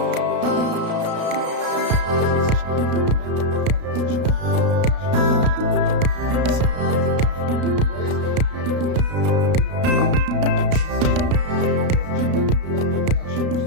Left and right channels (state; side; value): late; left; 33 ms